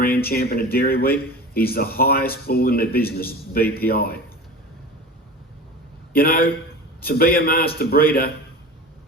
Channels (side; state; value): both; normal; correlation 0.34